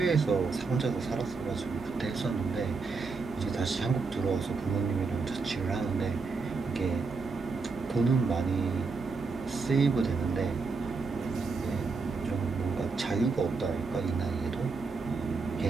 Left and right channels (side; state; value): left; quieter; 4.5 dB